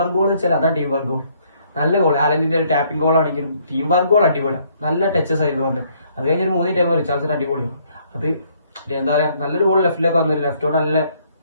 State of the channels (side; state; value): both; inverted; correlation -0.67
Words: ഗോൾ എന്ന് വെച്ചാൽ അതാണ് ടീം വർക്ക് ഗോൾ. നല്ല ഗോൾ, ആലന്റിന്റെ ഒരു ടാപ്പിംഗ് ഗോൾ ആണെങ്കിലും ടീം വർക്ക് ഗോൾ അടിപൊളിയാണ്. നല്ല ടച്ചസ് ആയിരുന്നു വന്നത്. അത് കഴിഞ്ഞൊരു 3 ടൈം റിച്ചാർഡ്സിന് അടിപൊളി. അത് എന്താ പറയാ, നല്ലൊരു ഗോൾ ലെഫ്റ്റിലേക്ക് വന്നില്ല. ലെഫ്റ്റോട്